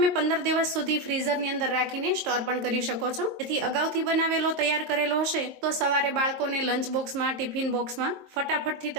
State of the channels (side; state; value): left; late; 22 ms